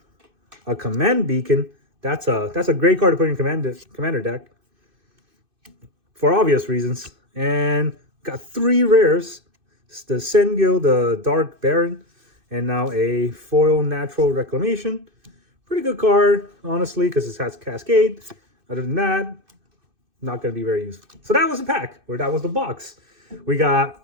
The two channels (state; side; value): late; left; 2.6 ms